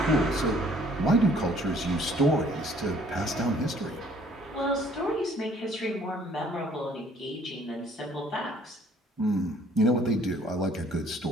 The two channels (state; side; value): normal; both; correlation 0.59